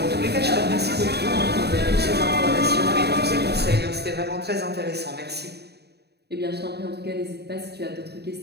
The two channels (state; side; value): late; left; 0.48 ms